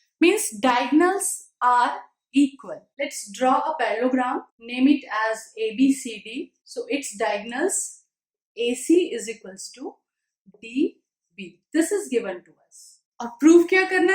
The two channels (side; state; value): both; identical; correlation 1.00